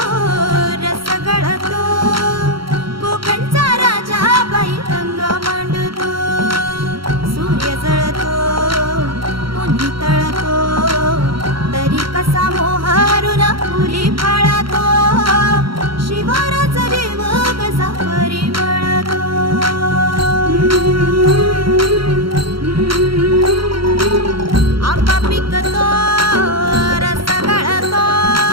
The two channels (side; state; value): left; late; 0.74 ms